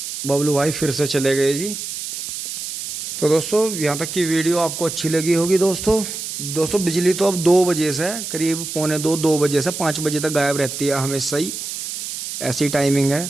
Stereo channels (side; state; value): right; noise; hiss, 7 dB below the sound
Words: बबलू भाई फिर से चले गए जी। तो दोस्तों यहाँ तक की वीडियो आपको अच्छी लगी होगी। दोस्तों बिजली तो अब 2 बजे से करीब 2 बजे से 5 बजे तक गायब रहती है हमेशा ही, ऐसी टाइमिंग है।